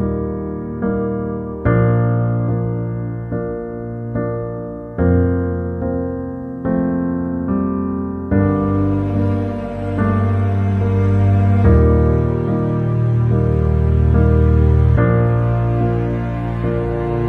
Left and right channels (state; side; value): identical; both; correlation 1.00